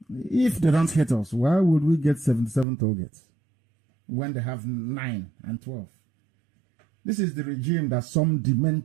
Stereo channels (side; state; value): left; drops out; at 2.7 s